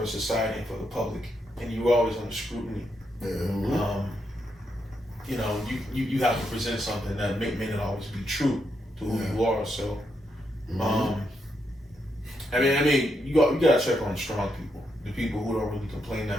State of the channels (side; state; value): both; normal; correlation 0.81